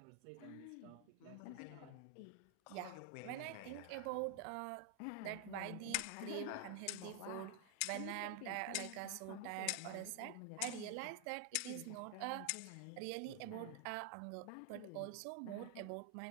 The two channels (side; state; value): both; different; correlation 0.00